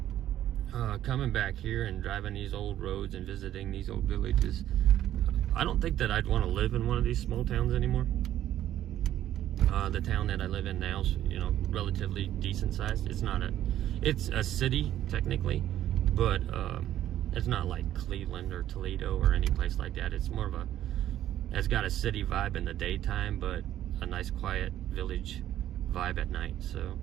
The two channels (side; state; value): left; quieter; 12.2 dB